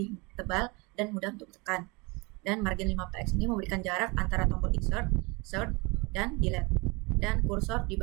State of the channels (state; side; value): quieter; left; 27.3 dB